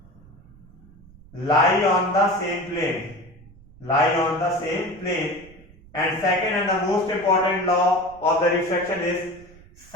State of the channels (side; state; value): right; noise; rumble, 24 dB below the sound